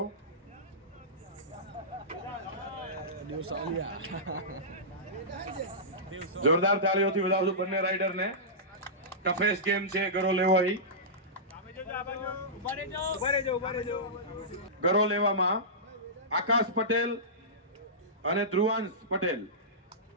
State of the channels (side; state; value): both; normal; correlation -0.18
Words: જોરદાર તાળીઓથી વધાવશું બંને રાઇડરને. ટફેસ્ટ ગેમ છે ગરો લેવાઈ. ગરો લેવામાં આકાશ પટેલ અને ધ્રુવાંશ પટેલ.